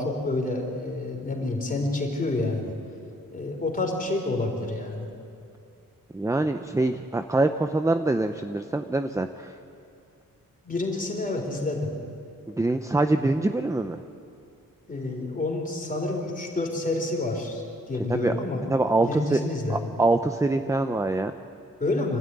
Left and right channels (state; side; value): normal; both; correlation 0.72